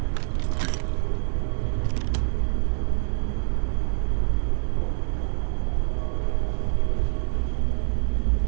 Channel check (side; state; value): left; silent; digital silence